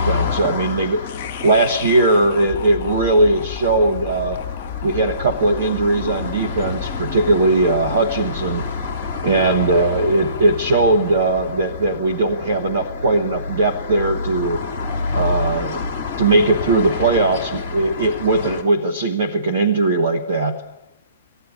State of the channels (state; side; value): inverted; both; correlation -0.57